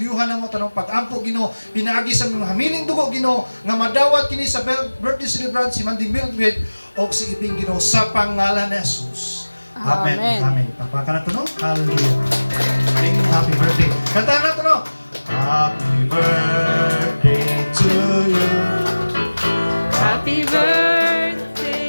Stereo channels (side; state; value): both; inverted; correlation -1.00